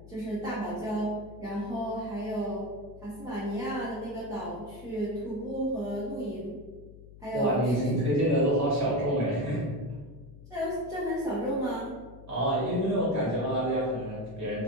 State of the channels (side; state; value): left; noise; hum, 18 dB below the sound